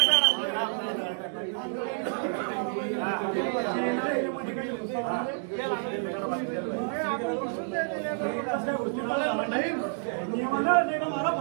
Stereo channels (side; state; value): left; silent; 59 dB below the other